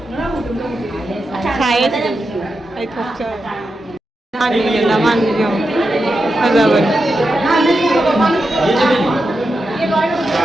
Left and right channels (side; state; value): both; normal; correlation 0.88